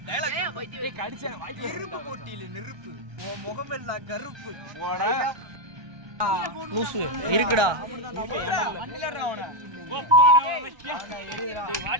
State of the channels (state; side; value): late; left; 1.2 ms